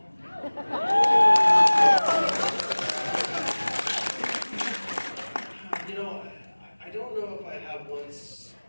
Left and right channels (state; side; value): inverted; both; correlation -1.00